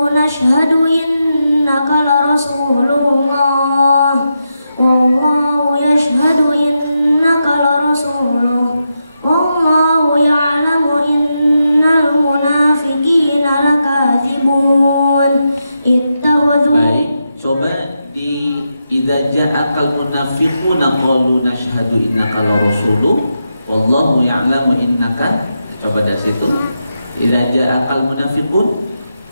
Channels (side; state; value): both; inverted; correlation -0.86